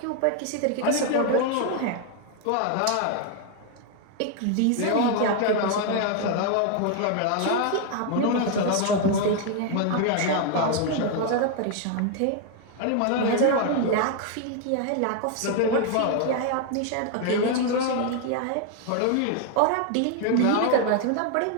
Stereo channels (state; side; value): different; both; correlation 0.00